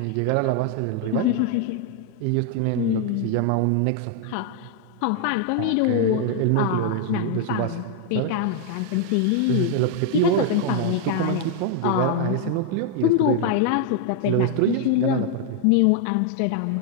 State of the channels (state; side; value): different; both; correlation 0.00